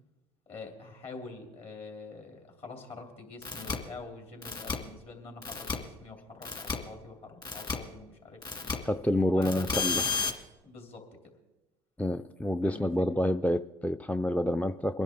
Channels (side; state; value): both; normal; correlation 0.71